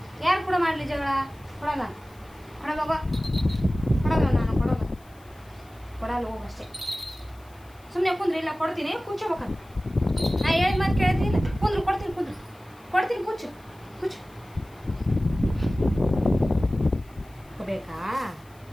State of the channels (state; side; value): noise; left; hiss, 29 dB below the sound